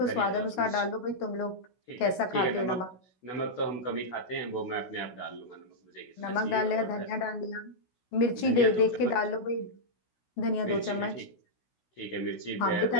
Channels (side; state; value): right; late; 16 ms